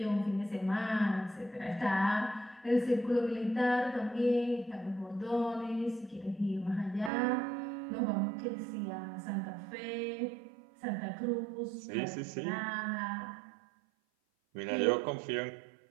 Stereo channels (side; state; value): left; drops out; at 7.1 s